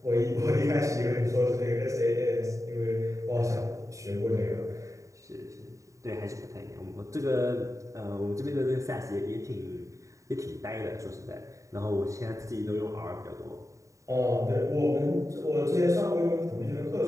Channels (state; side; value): late; left; 0.16 ms